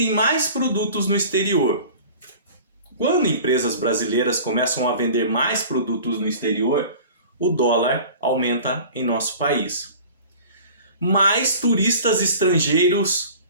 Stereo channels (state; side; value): inverted; both; correlation -0.42